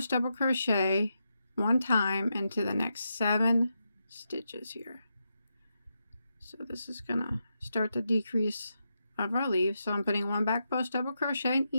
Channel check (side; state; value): both; inverted; correlation -0.85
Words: double crochet 1 time into the next 7 stitches here. So this is gonna start the decrease of our leaf. So I'm putting 1 back post double crochet in